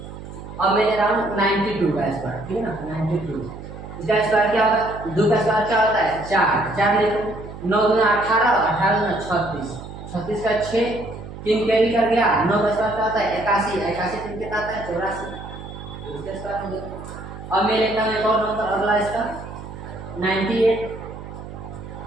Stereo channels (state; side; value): noise; right; hum, 12 dB below the sound